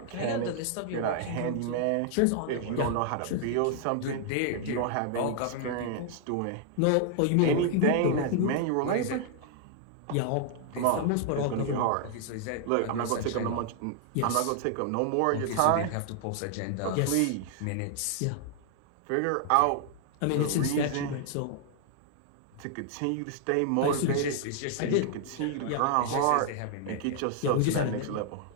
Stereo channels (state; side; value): different; both; correlation 0.00